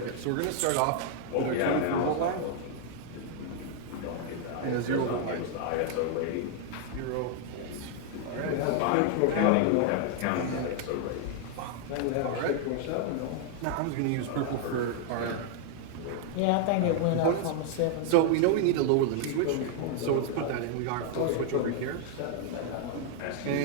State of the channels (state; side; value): different; both; correlation 0.00